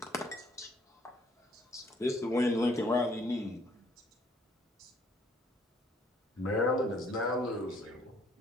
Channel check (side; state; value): both; normal; correlation 0.64